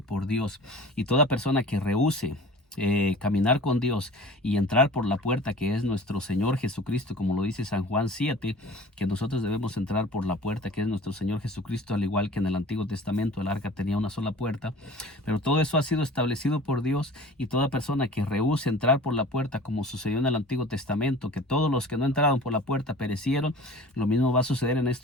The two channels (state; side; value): normal; both; correlation 0.41